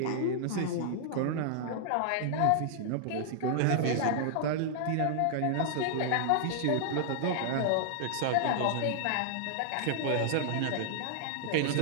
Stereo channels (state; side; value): different; both; correlation -0.01